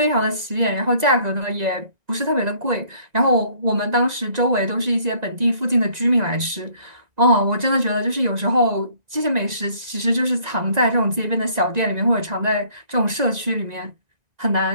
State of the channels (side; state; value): left; late; 1.9 ms